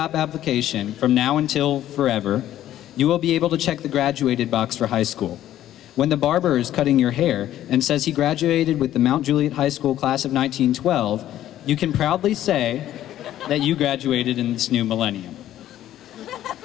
application, from now until forever, you will be able to check the graduated box for high school. When the barber is cutting your hair and says he graduated with the Mount Juliet High School class of 1912, you can proudly say that you graduated in this new millennium.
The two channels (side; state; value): right; quieter; 12.6 dB